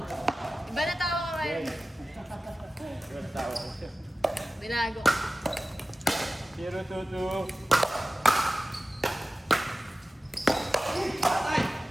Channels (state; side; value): normal; both; correlation 0.95